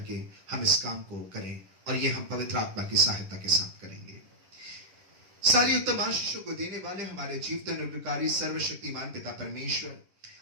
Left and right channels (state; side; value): late; left; 10 ms